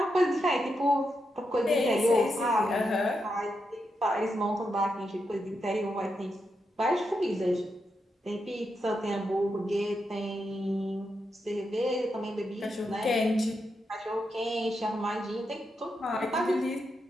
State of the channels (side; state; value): both; normal; correlation 0.85